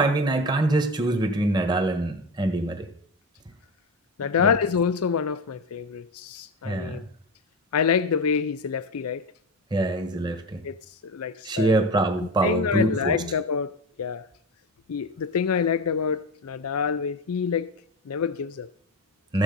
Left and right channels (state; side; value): normal; both; correlation 0.23